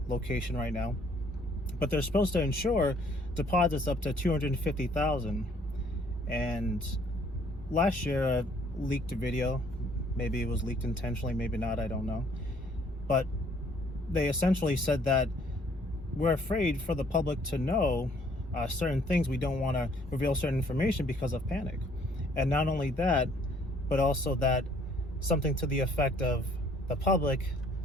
location right now. But they're supposed to insure deposits up to $250,000. And last year, I leaked a video. Maybe it was leaked intentionally, maybe not, I don't know. But they essentially said that we're afraid for the public to know certain things. We don't want to reveal certain information because of panic. And not only that, but also that something to the effect of the public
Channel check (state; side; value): normal; both; correlation 0.62